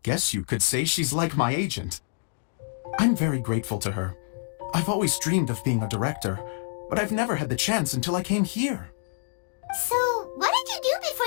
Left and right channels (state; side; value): silent; right; digital silence